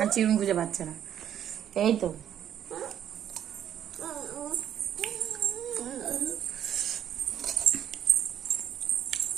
চিরুন খুঁজে পাচ্ছে না। এই তো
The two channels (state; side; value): quieter; left; 10.0 dB